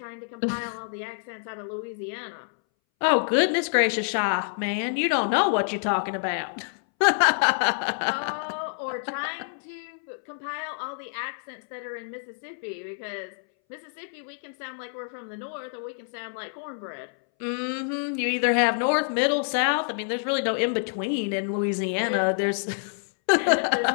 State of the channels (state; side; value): silent; right; 60 dB below the other